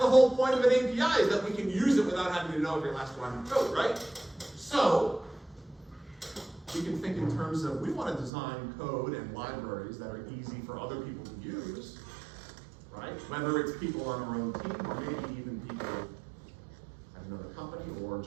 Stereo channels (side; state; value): left; drops out; at 8.3 s